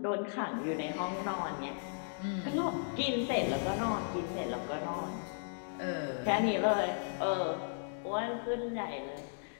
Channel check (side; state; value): right; silent; digital silence